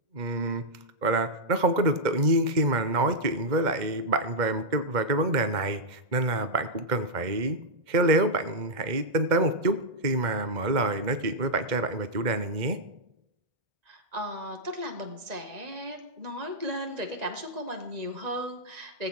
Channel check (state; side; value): late; left; 2.1 ms